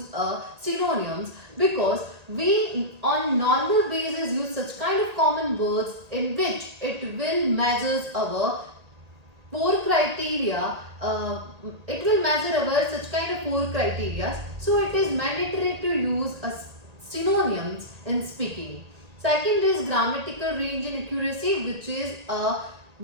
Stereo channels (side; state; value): left; late; 1.8 ms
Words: synonyms, because we on normal basis use such kind of common words in which it will measures our four criteria. It will measure our such kind of four criteria, so it is mandatory to use synonyms in speaking. Second is grammatical range and accuracy, which is